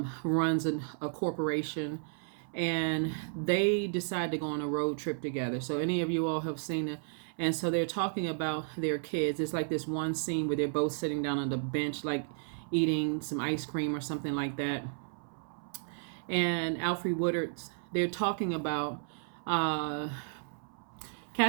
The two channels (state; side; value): silent; left; 56 dB below the other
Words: a corporation, and they decide to go on a road trip together. So any of you all have seen it. And so they're talking about their kids. It's like this one scene where they're both sitting down on the bench, like eating some ice cream or something like that. And Alfre Woodard's, they're talking about